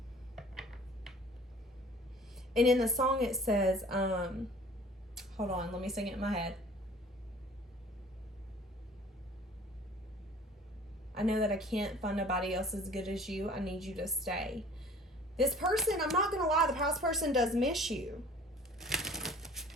And in the song it says, hold on, let me sing it in my head. I know that I can't find nobody else as good as you. I need you to stay. This person, I'm not going to lie, the past person does miss you.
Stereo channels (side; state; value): both; normal; correlation 0.50